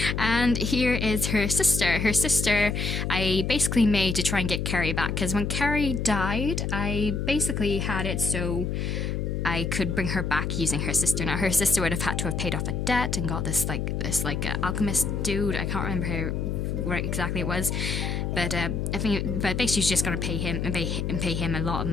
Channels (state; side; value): noise; left; hum, 1 dB below the sound